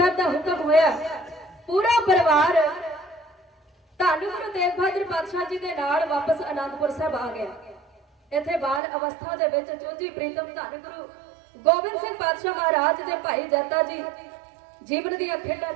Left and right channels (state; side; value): drops out; left; at 8.8 s